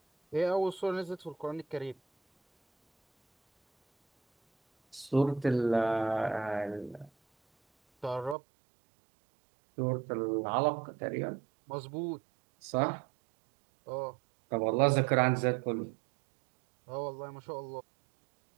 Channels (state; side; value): drops out; left; at 8.3 s